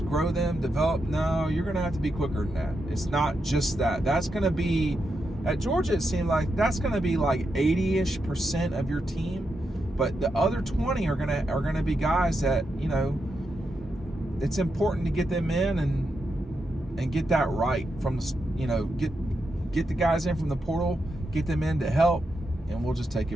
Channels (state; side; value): normal; both; correlation 0.85